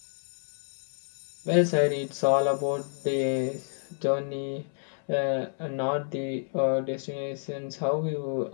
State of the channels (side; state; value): right; silent; 58 dB below the other